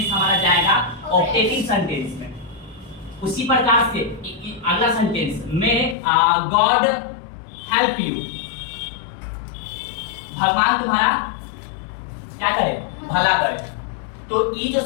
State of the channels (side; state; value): right; drops out; at 6.0 s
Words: हमारा जाएगा ऑप्टेटिव सेंटेंस में। उसी प्रकार से अगला सेंटेंस में गॉड हेल्प यू, भगवान तुम्हारा क्या करे? भला करे। तो ये जो